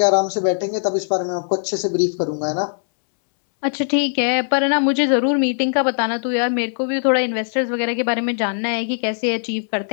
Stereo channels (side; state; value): right; silent; 66 dB below the other